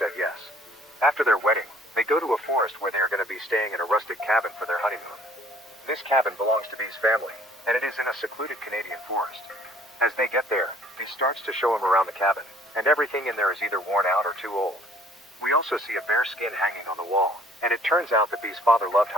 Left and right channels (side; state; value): both; normal; correlation 0.57